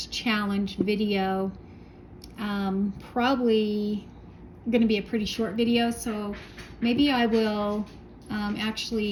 challenge video, probably going to be a pretty short video, so maybe I will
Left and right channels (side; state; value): both; identical; correlation 1.00